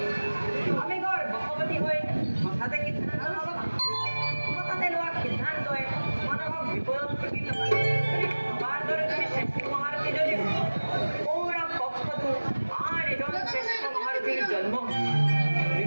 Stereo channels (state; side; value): inverted; both; correlation -1.00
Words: আমি গৰ্ভৱতী হৈ হঠাতে সিদ্ধান্ত নল'বা হঠাতে লোৱা সিদ্ধান্তই মানুহক বিপদত ঠেলি নপৰে আমাৰ দৰে তুমি শ্ৰেষ্ঠ মহাৰথী যদিও কৌৰৱ পক্ষতো আন এজন শ্ৰেষ্ঠ মহাৰথীৰ জন্ম